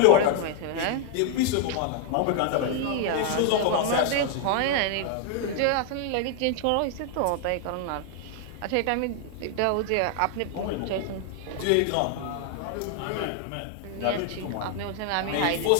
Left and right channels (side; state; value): both; different; correlation 0.00